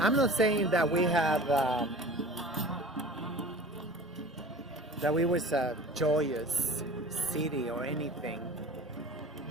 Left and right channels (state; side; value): normal; both; correlation 0.41